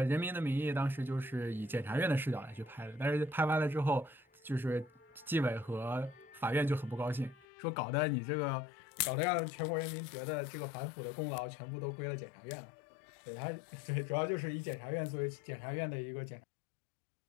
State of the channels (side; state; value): right; drops out; at 7.5 s